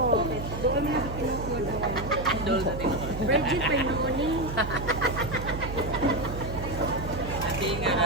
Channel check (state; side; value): noise; right; hum, 7 dB below the sound